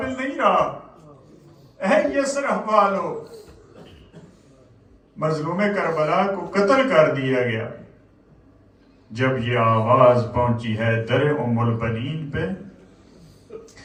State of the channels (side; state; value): both; identical; correlation 1.00